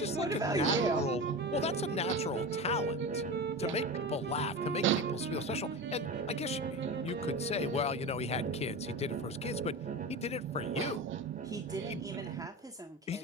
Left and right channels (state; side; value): normal; both; correlation 0.26